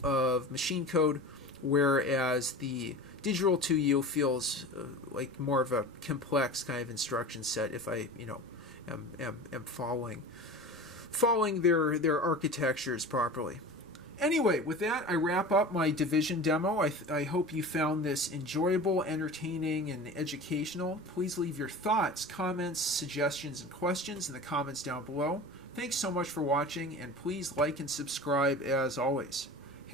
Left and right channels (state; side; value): noise; left; rumble, 30 dB below the sound